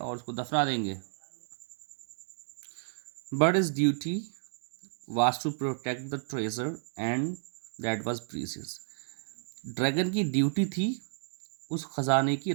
उसको दफना देंगे। But his duty was to protect the treasure and that was precious. Dragon की ड्यूटी थी उस खजाने की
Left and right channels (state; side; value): silent; left; digital silence